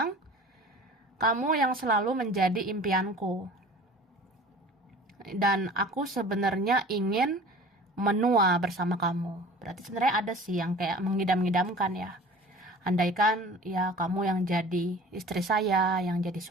kamu yang selalu menjadi impianku. Dan aku sebenarnya ingin menua bersama kamu. Berarti sebenarnya ada sih yang kayak mengidam-idamkan ya. Andaikan ya kamu yang jadi istri saya, yang jadi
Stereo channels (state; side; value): normal; both; correlation 0.43